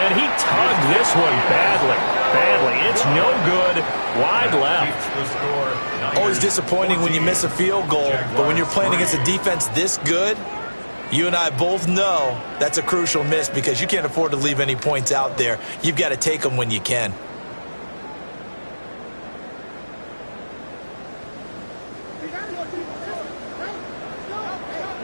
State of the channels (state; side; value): inverted; both; correlation -1.00